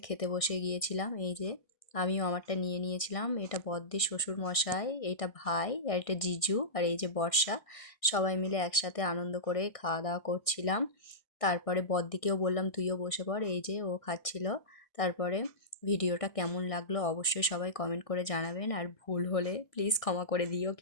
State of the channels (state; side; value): late; right; 1.6 ms